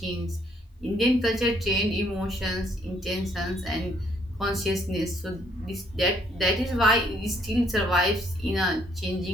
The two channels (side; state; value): both; normal; correlation 0.68